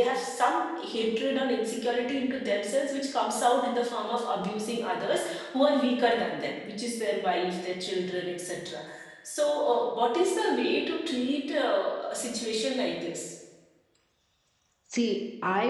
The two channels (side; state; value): both; identical; correlation 1.00